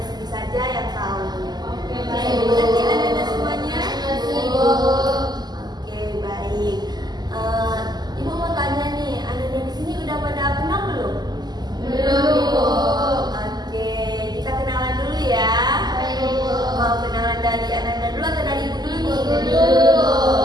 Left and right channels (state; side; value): late; left; 0.20 ms